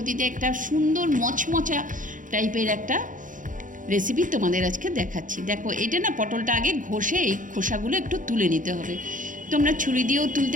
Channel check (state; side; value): late; left; 0.38 ms